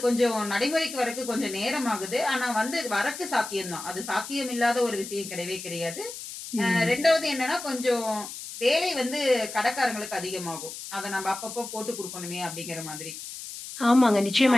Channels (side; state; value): left; noise; hiss, 10 dB below the sound